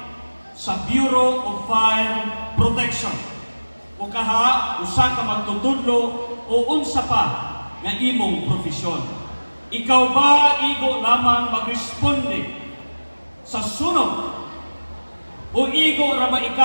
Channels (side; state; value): both; inverted; correlation -1.00